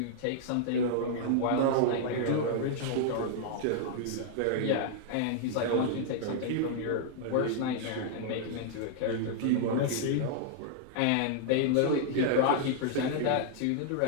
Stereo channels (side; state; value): both; different; correlation -0.01